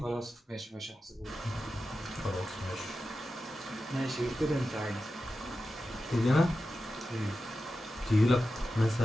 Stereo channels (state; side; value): normal; both; correlation 0.92